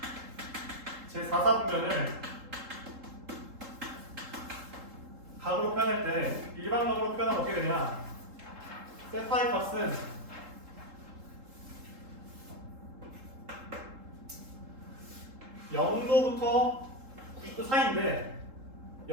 제4사분면을 각으로 표현할 때 일반각으로 표현하면 어떻게 되냐? 세타의 값은 (0도부터) 90도 사이인데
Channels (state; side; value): late; left; 3.7 ms